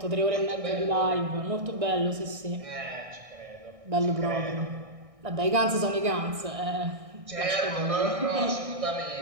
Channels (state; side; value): late; left; 1.6 ms